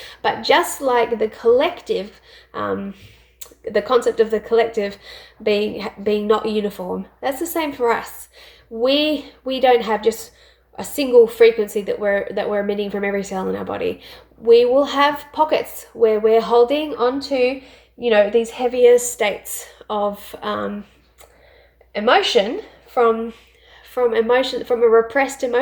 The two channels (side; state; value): both; identical; correlation 1.00